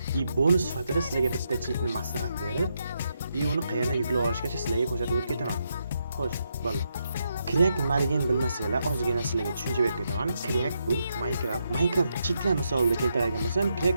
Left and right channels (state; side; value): inverted; both; correlation -0.81